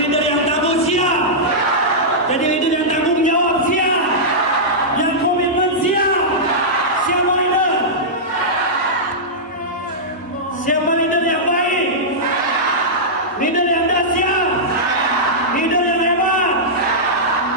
leader yang tangguh, siap. Jadi leader yang tanggung jawab, siap. Yang komitmen, siap. Siapa leader? Siapa leader yang baik? Leader yang dahsyat. Leader yang hebat.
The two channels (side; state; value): both; normal; correlation -0.11